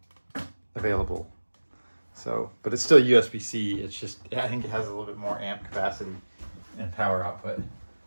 available. So, but it's still USB-C. It's just, I think it has a little bit more amp capacity and power output.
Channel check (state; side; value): inverted; both; correlation -1.00